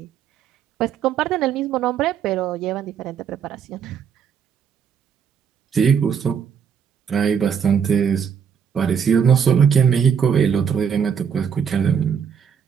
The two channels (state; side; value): quieter; left; 7.3 dB